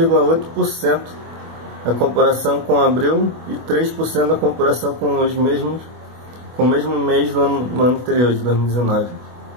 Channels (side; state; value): left; late; 24 ms